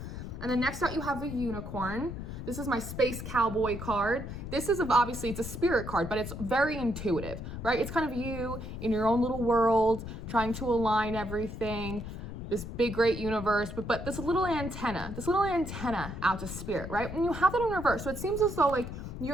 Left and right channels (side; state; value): left; noise; rumble, 8 dB below the sound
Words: And then next out you have a unicorn. This is my space cowboy card. This is obviously, it's a spirit card, but it's very intuitive, right? It's kind of you in your own little world, trying to align everything, this big, great universe, but this little antenna out to spirit, right? And you have that in reverse. So it seems as though like